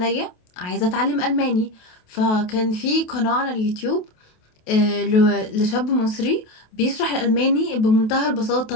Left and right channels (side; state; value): right; late; 28 ms